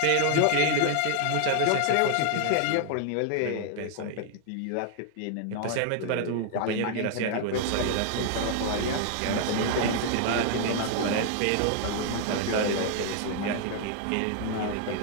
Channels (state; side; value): different; both; correlation 0.00